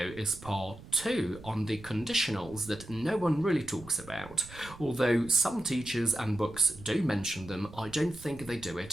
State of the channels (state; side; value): noise; right; rumble, 17 dB below the sound